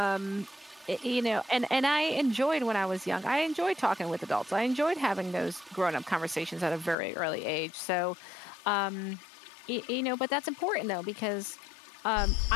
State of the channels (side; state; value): right; drops out; at 7.0 s